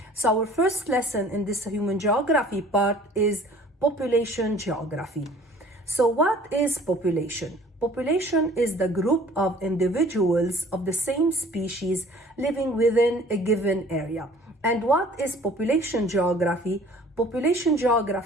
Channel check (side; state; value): both; normal; correlation 0.51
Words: So our first lesson in this human geography part is population geography. So what is population? Population is the group of individuals of the same species living within a given area. And what is population geography? Population